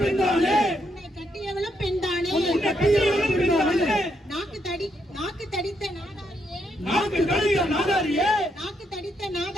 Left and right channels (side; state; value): both; normal; correlation 0.77